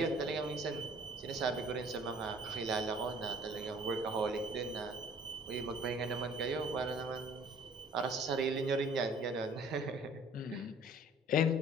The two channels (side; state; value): both; normal; correlation 0.53